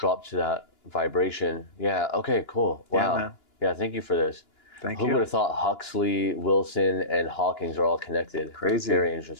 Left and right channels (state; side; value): late; right; 2.9 ms